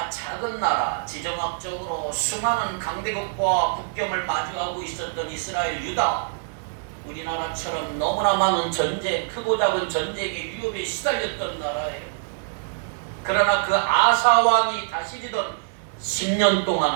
작은 나라, 지정학적으로 수많은 강대국과 국경을 마주하고 있었던 이스라엘 유다, 우리나라처럼 너무나 많은 전쟁, 크고 작은 전쟁의 위협에 시달렸던 나라예요. 그러나 그 아사 왕이 다스리던 10년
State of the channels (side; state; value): left; silent; digital silence